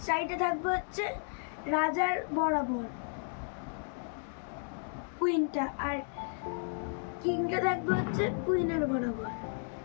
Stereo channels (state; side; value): silent; right; 55 dB below the other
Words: সাইডে থাকবে হচ্ছে রাজার বরাবর কুইনটা, আর কিংটা থাকবে হচ্ছে কুইনের বরাবর।